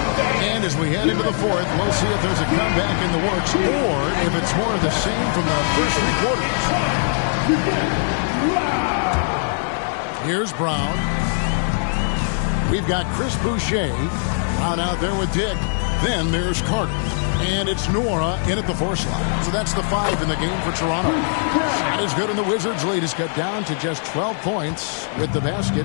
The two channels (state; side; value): silent; right; 64 dB below the other